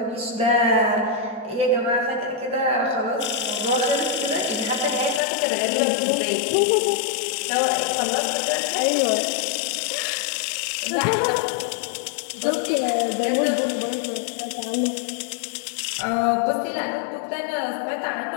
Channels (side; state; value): right; drops out; at 5.2 s